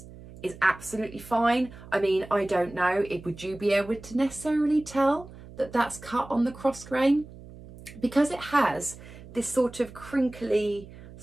is absolutely fine. I mean, I don't know, would you be able to necessarily tell that that's cut on the cross grain? Because it has this sort of crinkly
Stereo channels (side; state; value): right; noise; hum, 17 dB below the sound